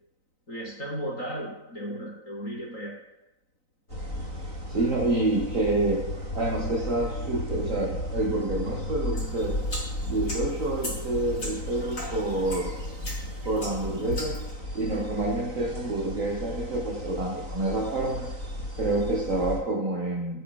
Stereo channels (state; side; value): late; right; 3.9 ms